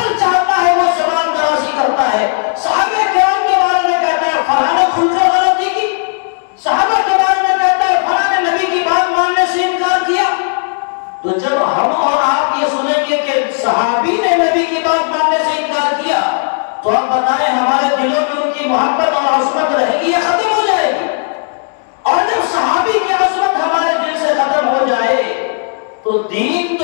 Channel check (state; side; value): silent; right; digital silence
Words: چاہتا ہے وہ زبان درازی کرتا ہے۔ صحابہ کرام کے بارے میں کہتا ہے فلاں نے کھل کر غلطی کی، صحابہ کے بارے میں کہتا ہے فلاں نے نبی کی بات ماننے سے انکار کیا۔ تو جب ہم اور آپ یہ سنیں گے کہ صحابی نے نبی کی بات ماننے سے انکار کیا تو آپ بتائیں ہمارے دلوں میں ان کی محبت اور عظمت رہے گی یا ختم ہو جائے گی؟ اور جب صحابی کی عظمت ہمارے دل سے ختم ہو جائے تو دین